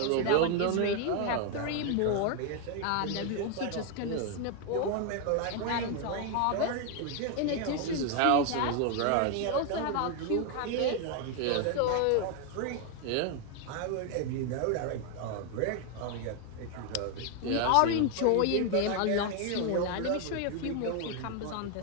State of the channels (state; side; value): different; both; correlation 0.01